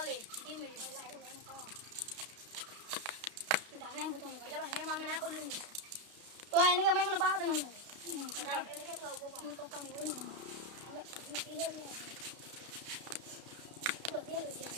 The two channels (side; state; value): left; late; 32 ms